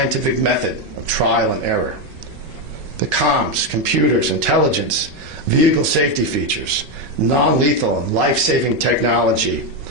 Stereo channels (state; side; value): normal; both; correlation 0.07